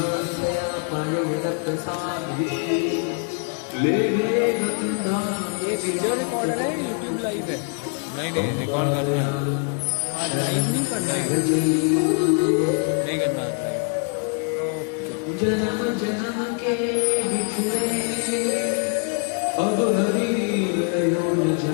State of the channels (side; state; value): right; quieter; 39.6 dB